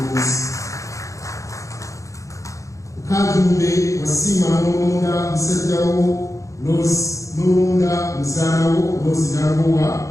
Kajumbe wasiima n'olonda musajjawo n'olonda muzaanawo Rose Nagowa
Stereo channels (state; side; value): late; right; 0.15 ms